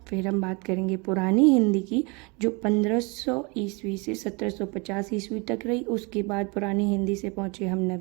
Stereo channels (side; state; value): left; quieter; 29.5 dB